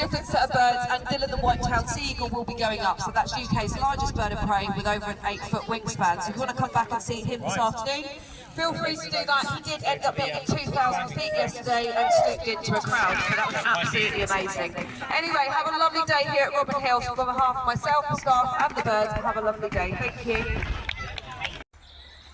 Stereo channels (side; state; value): both; identical; correlation 1.00